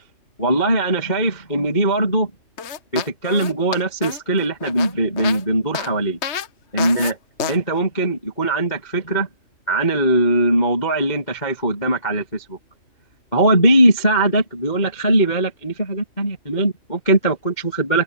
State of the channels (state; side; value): late; right; 3.2 ms